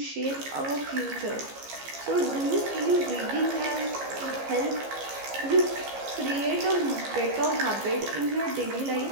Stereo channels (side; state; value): left; late; 15 ms